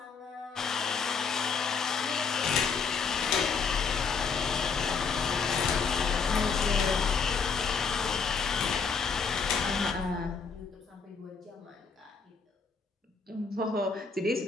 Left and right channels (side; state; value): right; quieter; 5.4 dB